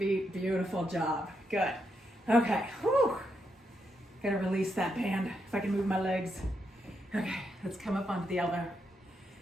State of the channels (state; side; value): normal; both; correlation 0.81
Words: Beautiful job. Good. Okay. Whew. Gotta release that band if I can move my legs. Okay, let's come up onto the elbow.